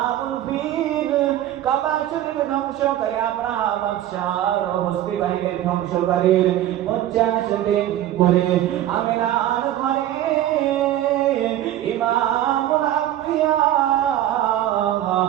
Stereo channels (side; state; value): left; quieter; 12.8 dB